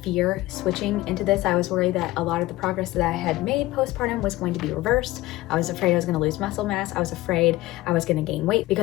fear switching into this. I was worried that a lot of the progress that I had made postpartum was going to be reversed. I was afraid I was going to lose muscle mass. I was afraid I was going to gain weight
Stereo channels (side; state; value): right; quieter; 17.7 dB